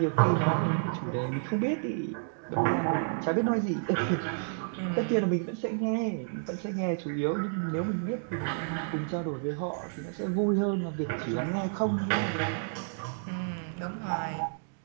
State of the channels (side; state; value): left; silent; digital silence